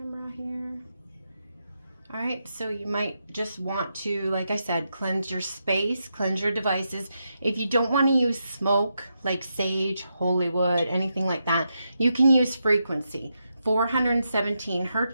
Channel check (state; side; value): inverted; both; correlation -0.85